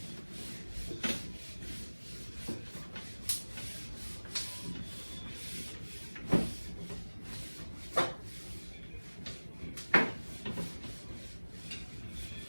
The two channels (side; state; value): both; inverted; correlation -1.00